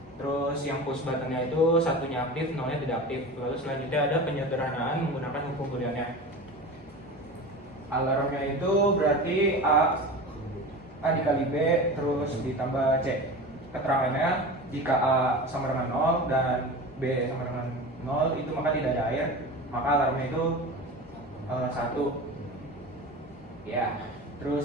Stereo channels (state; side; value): normal; both; correlation 0.31